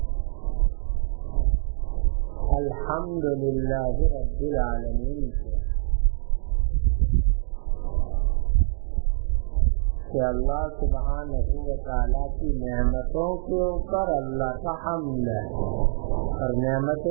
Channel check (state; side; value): silent; left; digital silence